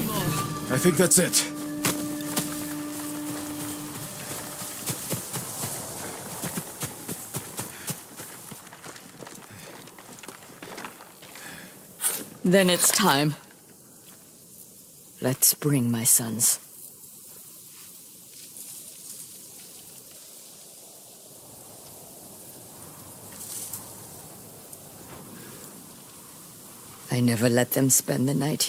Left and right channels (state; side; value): identical; both; correlation 1.00